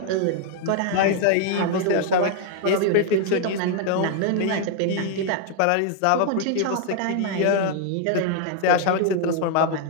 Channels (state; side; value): different; both; correlation 0.00